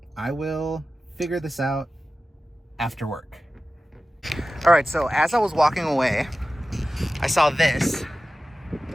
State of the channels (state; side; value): normal; both; correlation 0.95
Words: will figure this out after work. All right, so as I was walking away, I saw this,